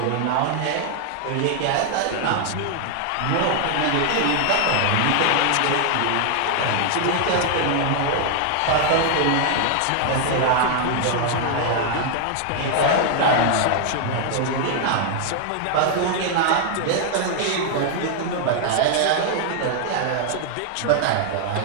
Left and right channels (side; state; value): both; different; correlation 0.00